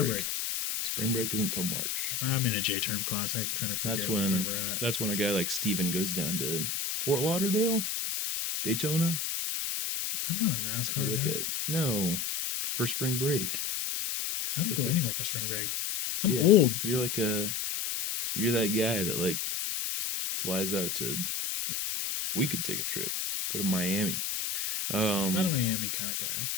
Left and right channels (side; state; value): left; noise; hiss, 1 dB below the sound